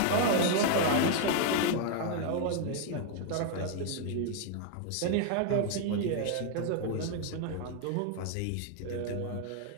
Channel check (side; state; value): both; different; correlation 0.00